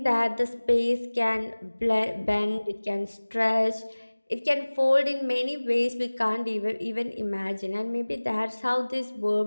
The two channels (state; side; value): inverted; both; correlation -1.00